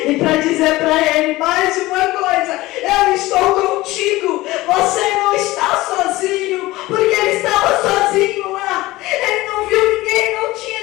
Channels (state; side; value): quieter; right; 18.7 dB